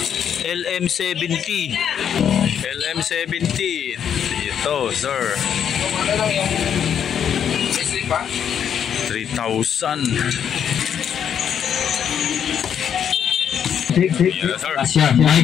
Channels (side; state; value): right; quieter; 8.5 dB